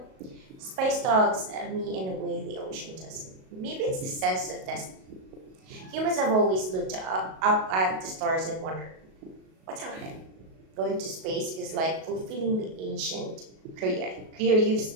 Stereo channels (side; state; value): left; late; 37 ms